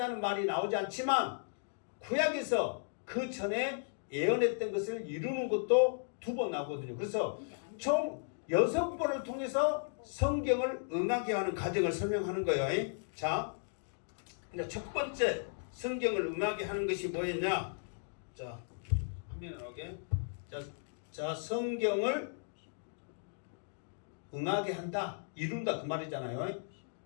말이 나오지 않지만 구약에서 그 전에 예언했던 것을 이루는 것도 2번 나오거든요. 그래서 총 6번을 통해서 성경을 응하게 하는 과정을 설명하는 거예요. 자, 이제 첫 번째 성경을 응하게 하는 것이 뭐였냐? 자, 화면에 나오게. 자, 성경을 응하게 한다, 이룬다 그 말이잖아요.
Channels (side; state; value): right; silent; digital silence